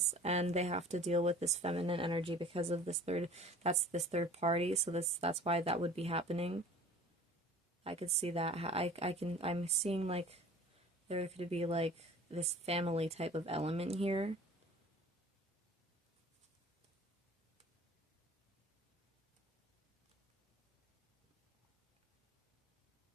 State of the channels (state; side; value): normal; both; correlation 0.44